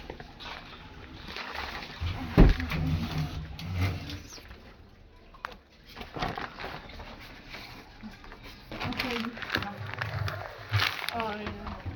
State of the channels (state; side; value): identical; both; correlation 1.00